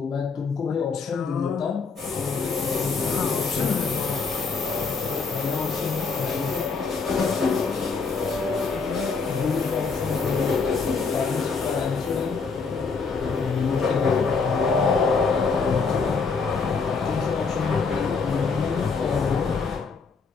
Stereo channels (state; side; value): quieter; right; 4.8 dB